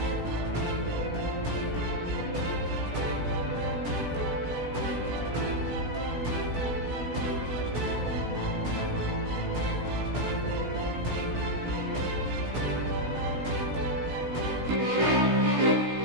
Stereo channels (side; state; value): left; late; 16 ms